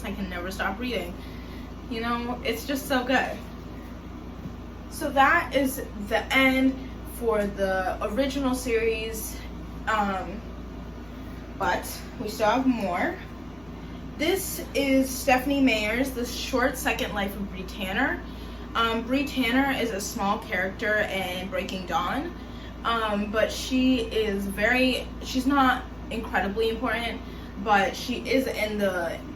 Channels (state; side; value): noise; right; rumble, 26 dB below the sound